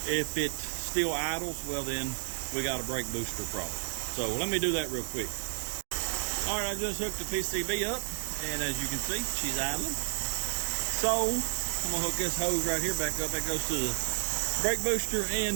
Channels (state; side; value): silent; left; digital silence